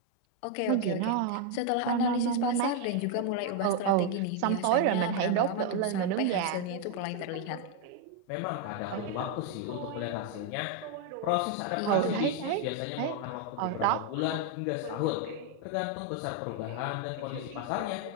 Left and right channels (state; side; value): different; both; correlation 0.01